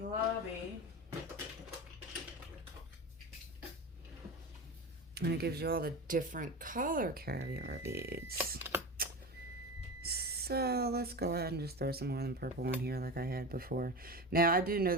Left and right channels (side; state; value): both; normal; correlation 0.26